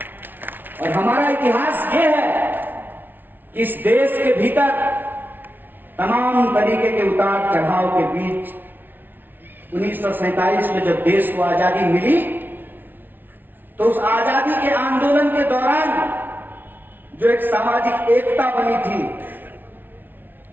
और हमारा इतिहास ये है कि इस देश के भीतर तमाम तरीके के उतार चढ़ाव के बीच 1947 में जब देश को आजादी मिली तो उस आजादी के आंदोलन के दौरान जो एक सामाजिक एकता बनी थी,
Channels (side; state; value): left; late; 0.092 ms